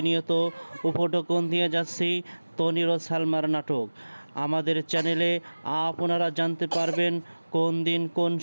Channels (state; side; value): inverted; both; correlation -1.00